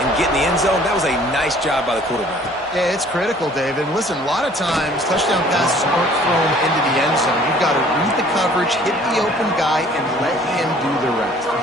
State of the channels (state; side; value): normal; both; correlation 0.54